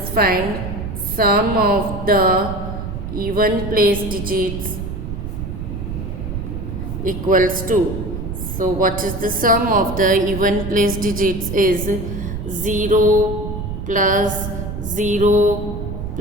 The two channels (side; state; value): right; noise; rumble, 6 dB below the sound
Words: find sum of the even place digits equals to. So what is the sum of the even place digits is 0 plus 0